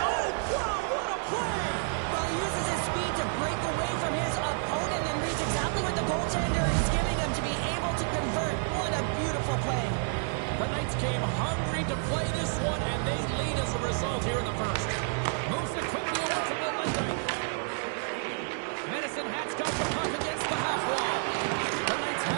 Oh, wow, what a play. Well, he uses his speed to break away from his opponent and reads exactly what the goaltender is giving him to be able to convert. What a beautiful play. The Knights came hungry to play this one, and they lead as a result here in the first. Moves it quickly over to the London. Medicine Hat's got the puck against the half wall. The Knights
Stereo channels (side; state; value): left; silent; 58 dB below the other